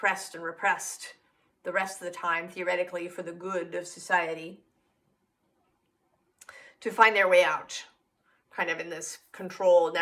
and repressed the rest of the time, theoretically, for the good of society, to find their way out, kind of in this controlled,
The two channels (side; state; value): both; identical; correlation 1.00